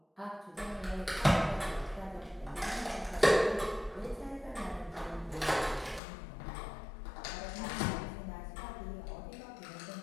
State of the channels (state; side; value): drops out; right; at 6.0 s